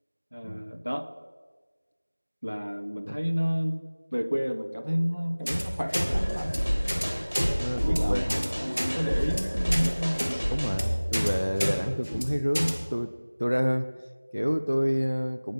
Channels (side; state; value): both; inverted; correlation -1.00